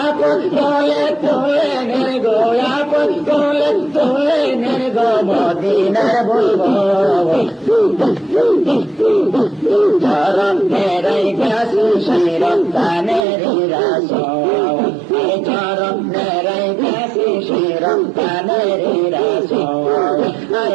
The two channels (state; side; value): drops out; left; at 13.2 s